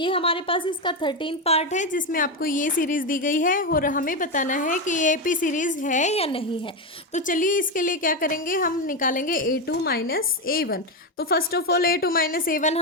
हमारे पास इसका 13th पार्ट है, जिसमें आपको ये सीरीज़ दी गई है और हमें बताना है कि ये एपी सीरीज़ है या नहीं है। तो चलिए इसके लिए क्या करेंगे, हम निकालेंगे a2 माइनस a1। तो first of all a2 minus a1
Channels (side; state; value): both; normal; correlation 0.10